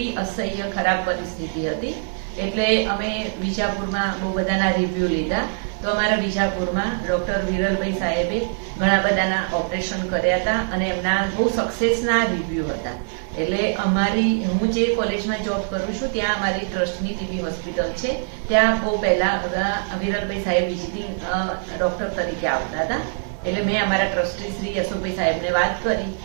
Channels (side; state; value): left; silent; 64 dB below the other